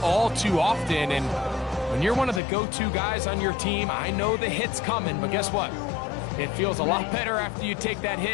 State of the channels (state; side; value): drops out; right; at 2.4 s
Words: all too often. And when you're one of the go-to guys on your team, I know the hit's coming, but guess what? It feels a lot better after you take that